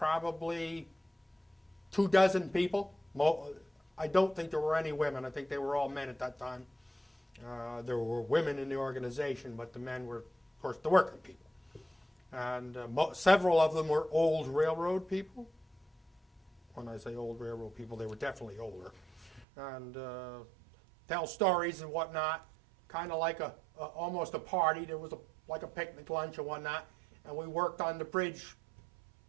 24 people. I don't think there were any women. I think they were all men at that time. There were women in the organization, but the men were, of course, the working people. And several of them were old railroad people. When I say old railroad people, they were definitely older. And tell stories and whatnot, kind of like almost a party. There was like a picnic lunch and whatnot, and we worked on the bridge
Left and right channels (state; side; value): drops out; left; at 19.5 s